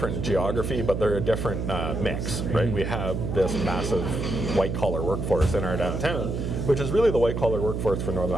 geography, but they're a different mix, right? We have this massive white-collar workforce in our downtown, which is really the white-collar workforce for Northern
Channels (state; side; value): noise; right; hum, 3 dB below the sound